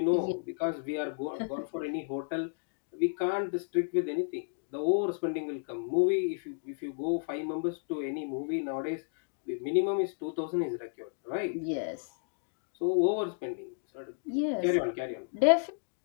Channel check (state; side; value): silent; right; digital silence